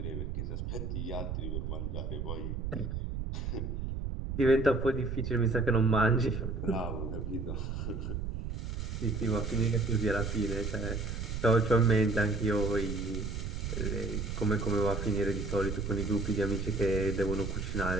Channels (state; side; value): noise; right; rumble, 4 dB below the sound